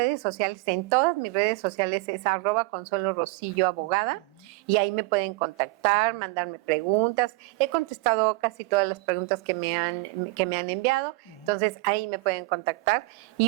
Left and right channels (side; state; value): left; quieter; 24.0 dB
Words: sociales, en todas mis redes sociales es @Consuelo Rosillo Abogada, y ahí me pueden contactar, mandarme preguntas. He contestado casi todas las preguntas que me han enviado, entonces ahí me pueden contactar